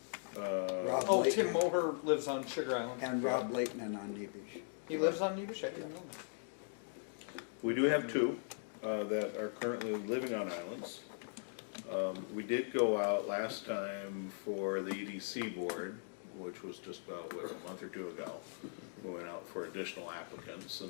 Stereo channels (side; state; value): right; silent; digital silence